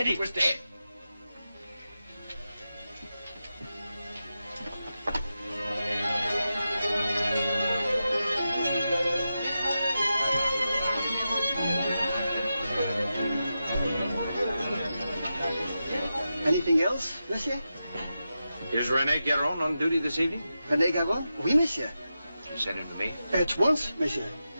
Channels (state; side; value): inverted; both; correlation -0.90